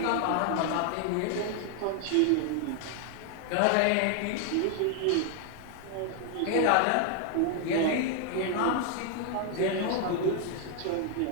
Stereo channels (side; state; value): both; different; correlation 0.00